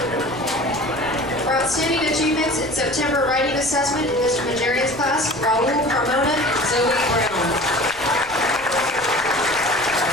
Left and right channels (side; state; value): right; noise; rumble, 21 dB below the sound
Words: For outstanding achievements in September writing assessment in Mr. Majerian's class, Raul Carmona and Zoe Brown.